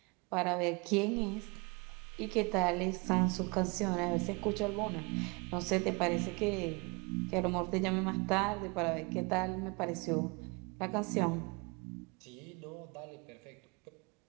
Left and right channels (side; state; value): left; quieter; 29.2 dB